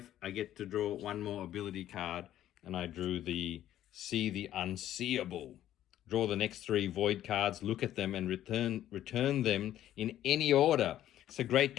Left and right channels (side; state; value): right; quieter; 12.4 dB